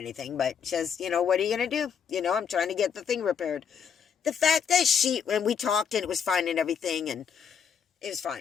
But says, what are you going to do? I'm trying to get the thing repaired. The fact that when we talked and it was fine and everything, and it was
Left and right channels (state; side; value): quieter; right; 7.3 dB